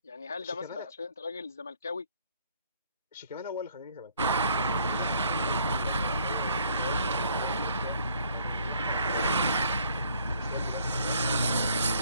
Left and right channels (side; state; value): both; inverted; correlation -0.62